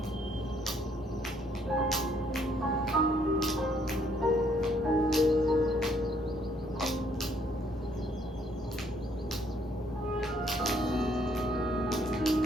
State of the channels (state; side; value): normal; both; correlation 0.67